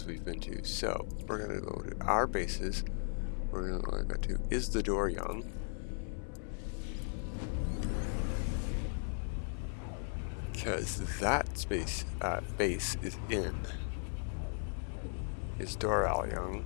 we've been to. So we're going to go to our bases. We're going to go to, is the door young? Because that space base is in. Is Doral young?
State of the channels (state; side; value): silent; right; 53 dB below the other